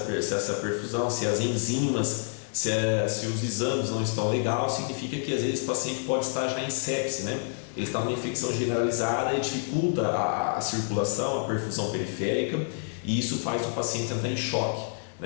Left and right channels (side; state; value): right; silent; digital silence